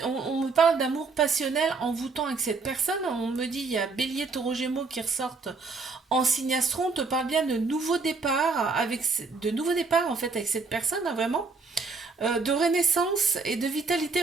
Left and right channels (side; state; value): left; quieter; 4.2 dB